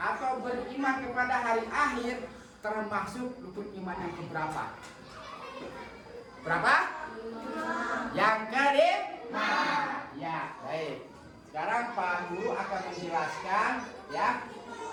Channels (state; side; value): identical; both; correlation 1.00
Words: beriman kepada hari akhir termasuk rukun iman yang keberapa? Berapa? Yang kelima. Ya, baik. Sekarang Pak Guru akan menjelaskan ya